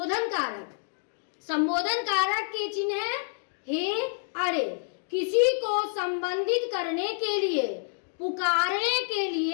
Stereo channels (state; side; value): silent; right; digital silence